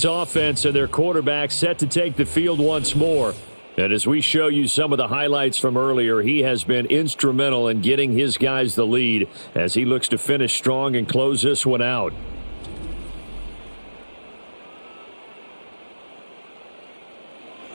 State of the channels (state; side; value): inverted; both; correlation -1.00